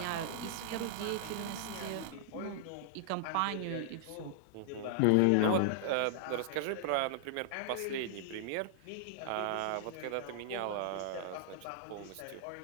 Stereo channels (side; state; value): both; different; correlation -0.01